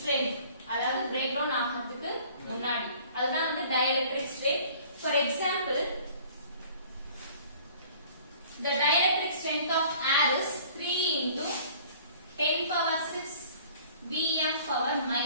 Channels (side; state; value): both; inverted; correlation -0.51